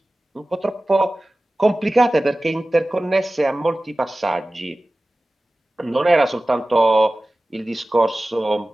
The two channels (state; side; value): normal; both; correlation 0.97